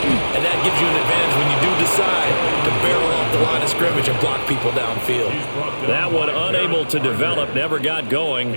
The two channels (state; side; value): inverted; both; correlation -1.00